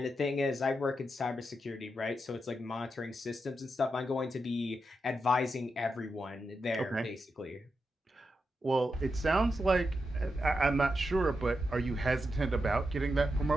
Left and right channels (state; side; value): normal; both; correlation 0.86